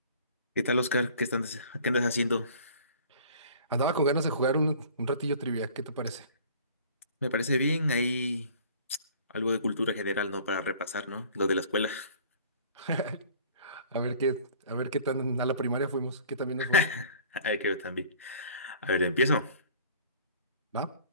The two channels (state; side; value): inverted; both; correlation -0.50